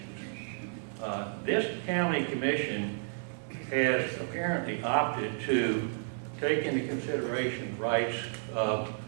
This county commission has apparently opted to take into consideration the rights of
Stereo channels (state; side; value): silent; left; 57 dB below the other